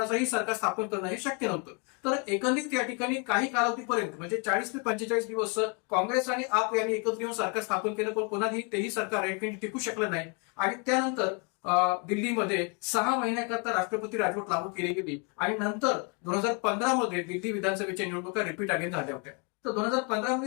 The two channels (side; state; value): right; quieter; 35.1 dB